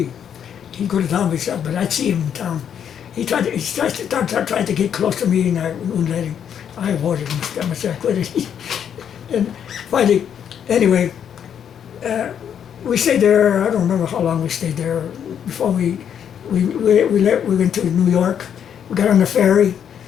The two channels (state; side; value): quieter; right; 8.6 dB